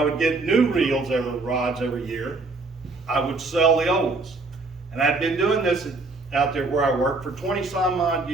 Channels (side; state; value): left; quieter; 3.5 dB